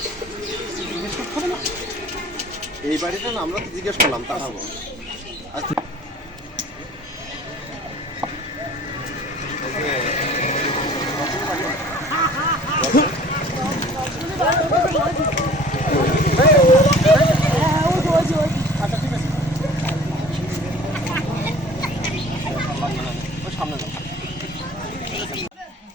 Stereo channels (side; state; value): both; normal; correlation 0.47